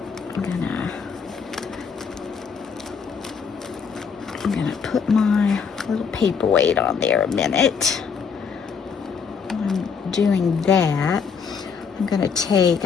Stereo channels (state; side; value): quieter; right; 6.1 dB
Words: I'm gonna put my little paperweight on there a minute. While I'm doing that,